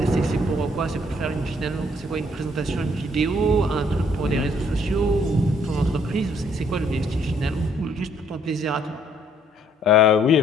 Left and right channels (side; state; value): both; normal; correlation 0.65